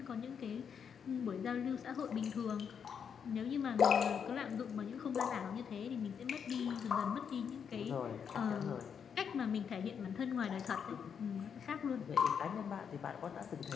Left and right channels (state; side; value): quieter; right; 7.2 dB